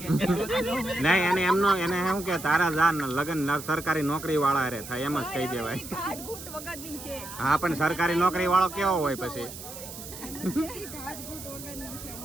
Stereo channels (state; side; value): noise; right; hiss, 12 dB below the sound